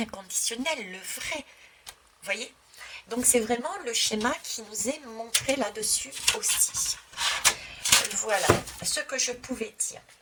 le vrai. Vous voyez? Donc c'est vraiment le schéma qui nous est montré là-dessus aussi. Voilà ce que je pouvais dire.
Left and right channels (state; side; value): identical; both; correlation 1.00